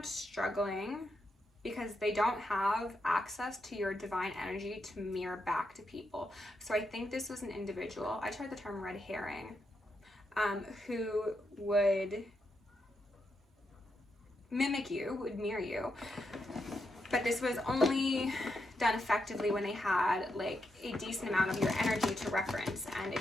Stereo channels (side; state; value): both; normal; correlation 0.83